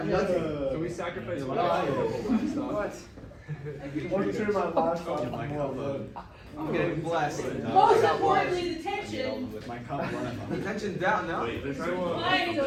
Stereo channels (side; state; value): both; identical; correlation 1.00